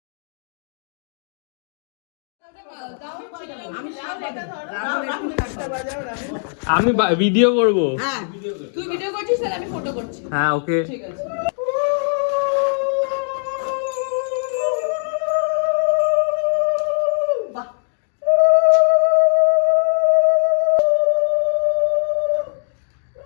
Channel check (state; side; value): silent; right; digital silence